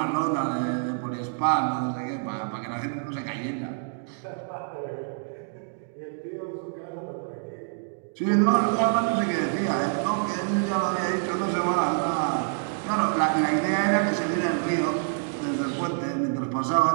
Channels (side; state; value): left; silent; digital silence